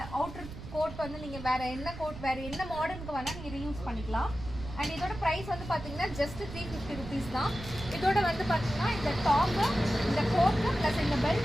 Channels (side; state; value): right; noise; rumble, 12 dB below the sound